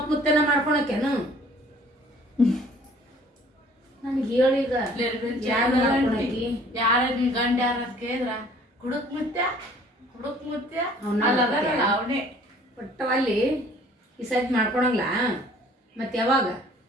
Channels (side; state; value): both; normal; correlation 0.55